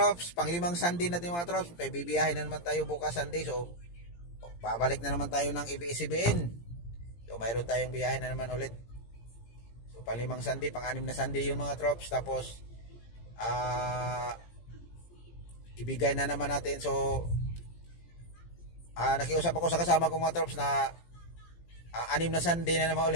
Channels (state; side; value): late; right; 17 ms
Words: pang-5 Sunday natin mga trops, may bibiyahin na naman tayo bukas Sunday. So babalik na naman tayo ng ABS-CBN. So mayroon tayong biyahe na naman ulit. So pang-5 Sunday, pang-6 na Sunday yun mga trops. Tapos ibigay na naman natin. So nakiusap ako sa kasama kong mga trops na 6 na Sunday na naman